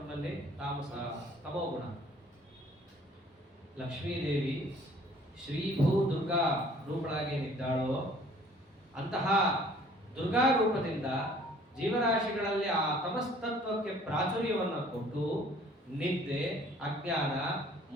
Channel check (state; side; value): normal; both; correlation 0.55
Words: ತಾಮಸ, ತಮೋ ಗುಣ. ಲಕ್ಷ್ಮೀದೇವಿ ಶ್ರೀಭೂ ದುರ್ಗಾ ರೂಪಳಾಗೇನಿದ್ದಾಳೋ ಅಂತಹ ದುರ್ಗಾ ರೂಪದಿಂದ ಜೀವರಾಶಿಗಳಲ್ಲಿ ಆ ತಮಸ್ತತ್ವಕ್ಕೆ ಪ್ರಾಚುರ್ಯವನ್ನು ಕೊಟ್ಟು ನಿದ್ದೆ, ಅಜ್ಞಾನ,